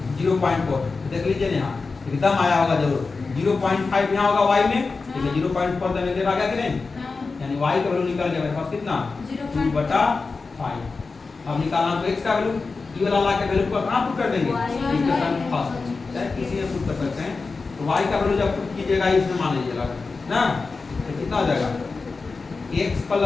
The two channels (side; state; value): right; quieter; 4.2 dB